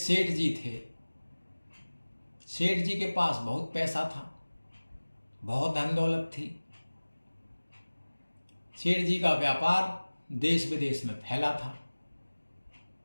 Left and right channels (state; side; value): inverted; both; correlation -1.00